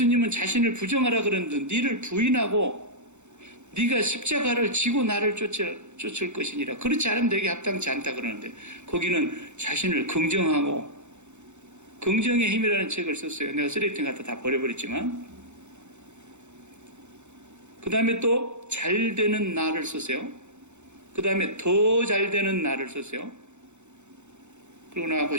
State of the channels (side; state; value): left; late; 0.83 ms